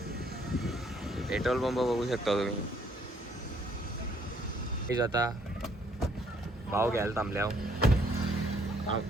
पेट्रोल पंप बघू शकता तुम्ही. आता भाव घ्यायला थांबले आहो.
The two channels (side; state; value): both; normal; correlation 0.66